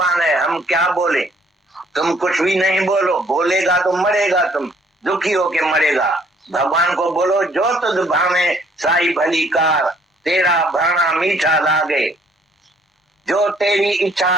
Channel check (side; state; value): both; normal; correlation 0.63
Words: है, हम क्या बोले। तुम कुछ भी नहीं बोलो, बोलेगा तो मरेगा, तुम दुखी होके मरेगा। भगवान को बोलो जो तुझ भावे साई भली कार, तेरा भाना मीठा लागे, जो तेरी